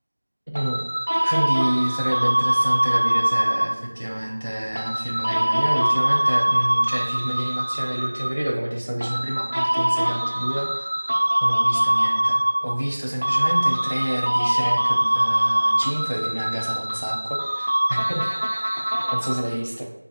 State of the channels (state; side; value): inverted; both; correlation -1.00